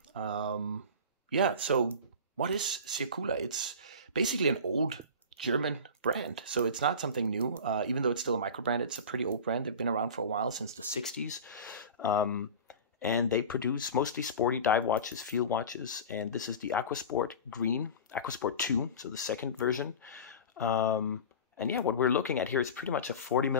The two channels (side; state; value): both; inverted; correlation -0.32